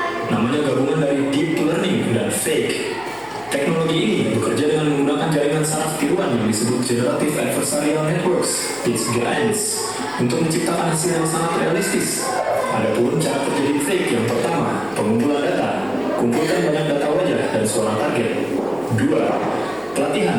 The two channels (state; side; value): noise; left; hum, 29 dB below the sound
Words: Namanya gabungan dari deep learning dan fake. Teknologi ini bekerja dengan menggunakan jaringan saraf tiruan yang disebut Generative Adversarial Networks (GANs) untuk menciptakan hasil yang sangat realistis. Adapun cara kerja deepfake yang pertama, pengumpulan data. Kumpulkan banyak data wajah dan suara target. 2.